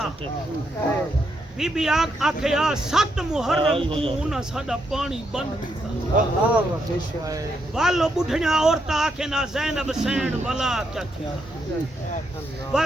بی بی آکھے آ 7 محرم کو انہاں ساڈا پانی بند کیتا والو بڈھیاں عورتاں آکھے نا زینب سین ولا کیا تھیا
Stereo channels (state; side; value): normal; both; correlation 0.79